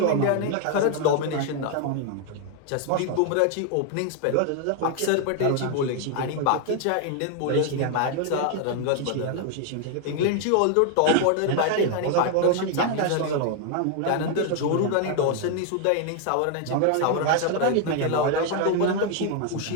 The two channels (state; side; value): different; both; correlation 0.00